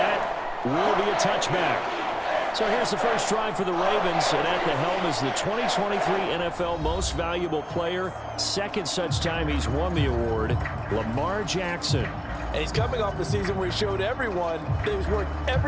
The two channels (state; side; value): identical; both; correlation 1.00